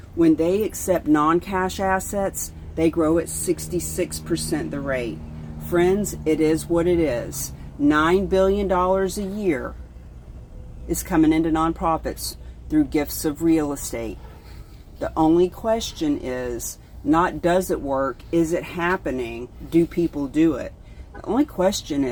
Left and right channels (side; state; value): both; identical; correlation 1.00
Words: When they accept non-cash assets, they grow at 66% the rate. Friends, it is what it is. $9 billion a year is coming into nonprofits through gifts of real estate. The only question is not does it work, is it happening, do people do it? The only question